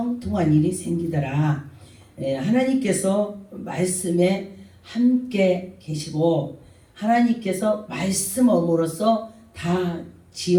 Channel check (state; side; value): identical; both; correlation 1.00